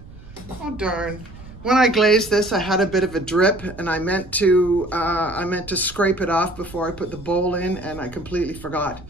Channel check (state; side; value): noise; right; rumble, 18 dB below the sound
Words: Oh, darn. When I glazed this, I had a bit of a drip, and I meant to scrape it off before I put the bowl in, and I completely forgot.